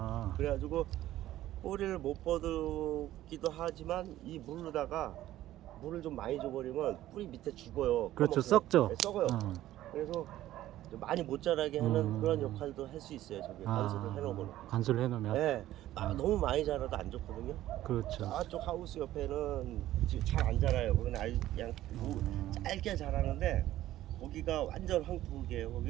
그래가지고 뿌리를 못 뻗기도 하지만 이 물로다가 물을 좀 많이 줘버리면 뿌리 밑에 죽어요. 그렇죠. 꺼먹어요. 썩죠. 네, 썩어요. 그래서 좀 많이 못 자라게 하는 그런 역할도 할 수 있어요. 저기 관수를 해놓으면. 관수를 해놓으면. 네, 너무 많이 자라도 안 좋거든요. 그렇죠. 저쪽 하우스 옆에는 지금 잘 안 자라요. 거기는 아주 그냥 짧게 자라는데 거기가 완전 황토기예요.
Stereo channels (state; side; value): quieter; left; 14.1 dB